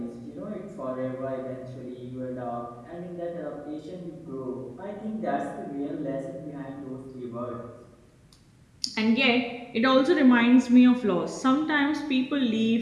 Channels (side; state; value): both; identical; correlation 1.00